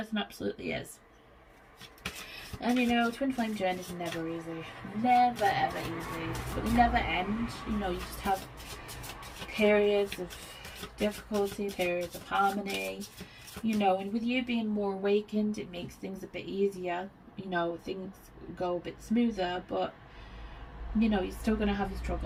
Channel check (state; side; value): identical; both; correlation 1.00